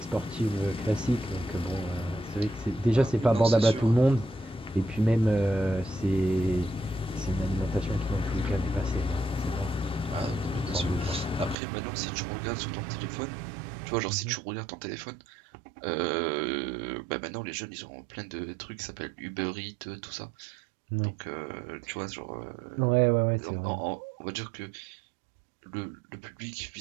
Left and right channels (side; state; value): left; drops out; at 11.6 s